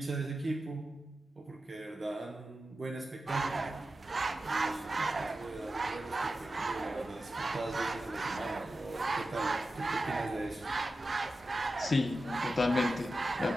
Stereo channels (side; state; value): both; normal; correlation 0.92